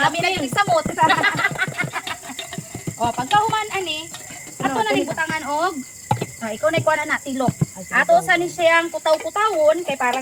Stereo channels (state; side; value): identical; both; correlation 1.00